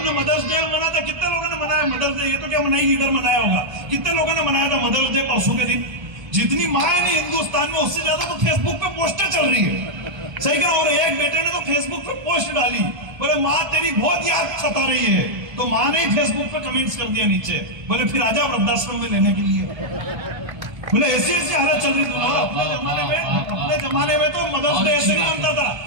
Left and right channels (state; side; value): late; left; 1.3 ms